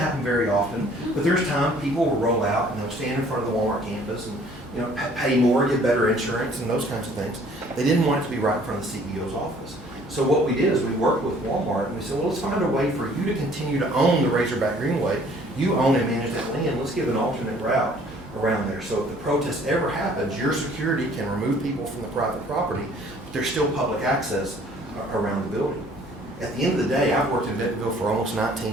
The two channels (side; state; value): both; normal; correlation 0.56